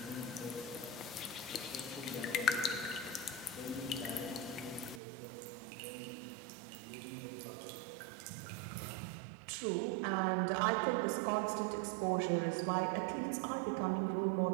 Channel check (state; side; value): drops out; left; at 5.0 s